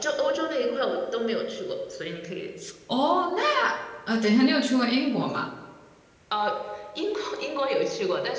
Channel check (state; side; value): identical; both; correlation 1.00